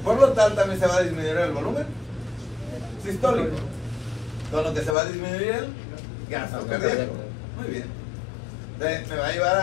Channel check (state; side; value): drops out; right; at 5.0 s